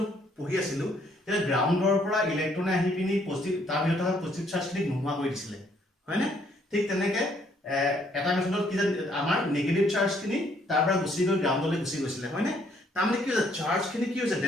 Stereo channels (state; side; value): normal; both; correlation 0.67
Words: পঢ়ি আছিলো, এটা গ্ৰাউণ্ডৰ পৰা ইলেক্ট্ৰনে আহি পিনি পজিটিভ তাৰ ভিতৰত থকা পজিটিভ চাৰ্জখিনি নোহোৱা কৰি দিছিলে, হয় না? ঠিক তেনেকে এটা মেথডত কি যে আমাৰ নেগেটিভ চাৰ্জখিনি তাৰ পৰা গুচি গৈ গ্ৰাউণ্ডলৈ গুচি গৈছিলে, হয় না? তাৰমানে কি হৈছে চাৰ্জখিনি কি হৈছে